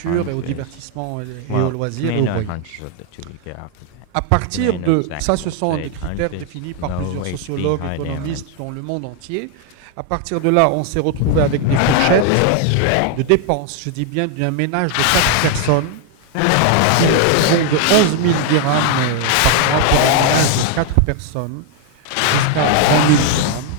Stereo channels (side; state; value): both; different; correlation 0.00